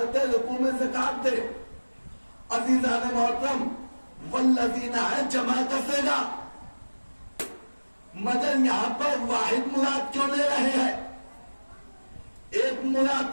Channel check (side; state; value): both; inverted; correlation -1.00